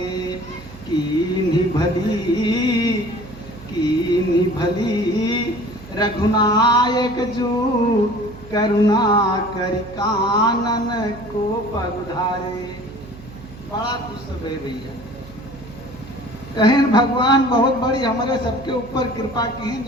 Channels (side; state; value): right; noise; hum, 17 dB below the sound